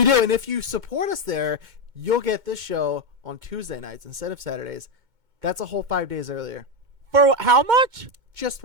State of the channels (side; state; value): left; late; 2.2 ms